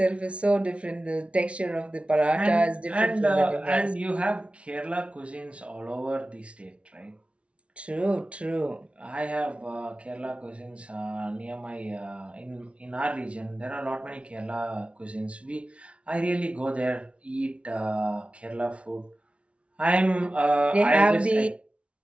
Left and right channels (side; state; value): left; late; 0.061 ms